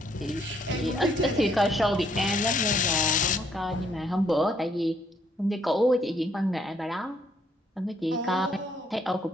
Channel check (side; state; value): both; normal; correlation 0.69